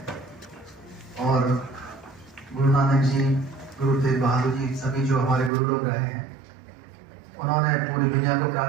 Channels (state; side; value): drops out; left; at 5.5 s